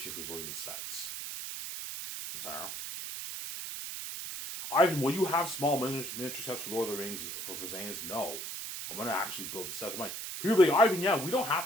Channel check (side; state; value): right; noise; hiss, 6 dB below the sound